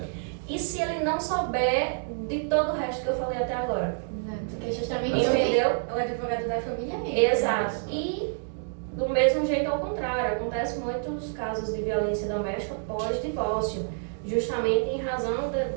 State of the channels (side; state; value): left; silent; digital silence